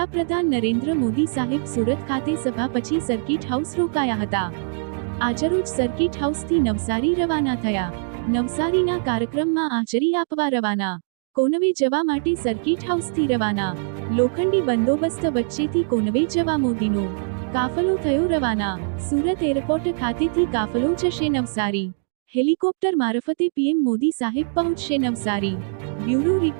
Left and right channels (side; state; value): left; silent; digital silence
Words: નરેન્દ્ર મોદી સાહેબ સુરત ખાતે સભા પછી સર્કિટ હાઉસ રોકાયા હતા। આજરોજ સર્કિટ હાઉસથી નવસારી રવાના થયા। નવસારીના કાર્યક્રમમાં હાજરી આપવા રવાના। કોનવે જવા માટે સર્કિટ હાઉસથી રવાના। લોખંડી બંદોબસ્ત વચ્ચેથી કોનવે જવા મોદીનો કાફલો થયો રવાના। સુરત એરપોર્ટ ખાતેથી કાફલો જશે નવસારી। હેલિકોપ્ટર મારફતે પીએમ મોદી સાહેબ પહોંચશે નવસારી। Bureau